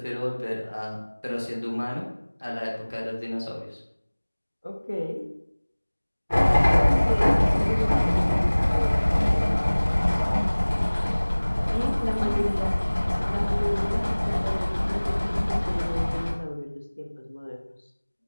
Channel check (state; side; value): inverted; both; correlation -1.00